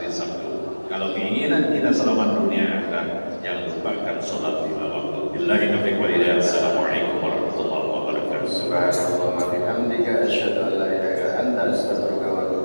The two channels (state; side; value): inverted; both; correlation -1.00